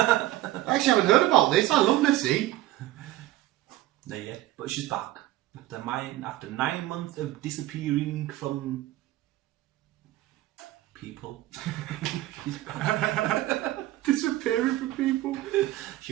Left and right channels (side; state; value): left; quieter; 16.1 dB